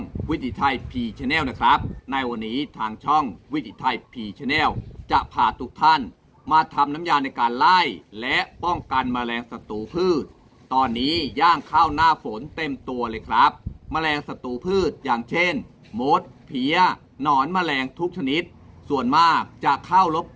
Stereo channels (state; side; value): identical; both; correlation 1.00